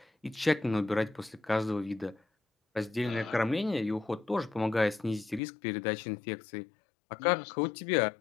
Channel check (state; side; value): drops out; right; at 5.4 s